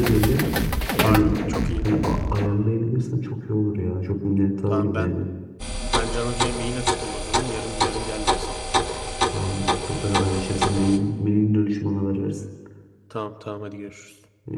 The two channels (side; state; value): both; identical; correlation 1.00